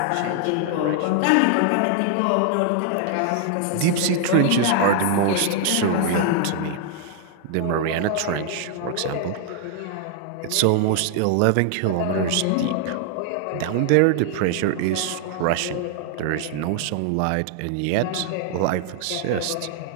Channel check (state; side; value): different; both; correlation 0.00